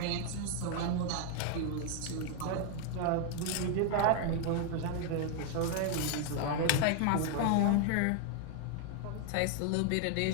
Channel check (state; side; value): different; both; correlation 0.00